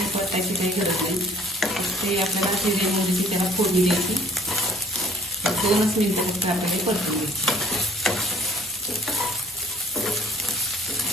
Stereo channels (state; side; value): normal; both; correlation 0.55